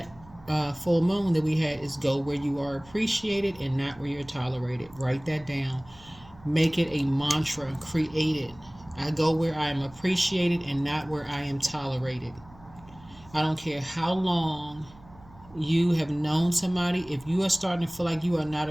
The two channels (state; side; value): noise; right; hum, 23 dB below the sound